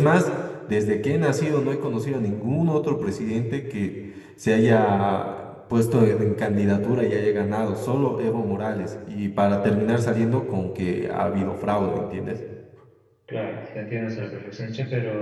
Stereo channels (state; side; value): identical; both; correlation 1.00